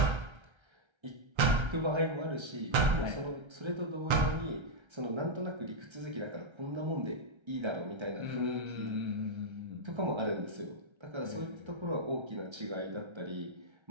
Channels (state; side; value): late; left; 1.3 ms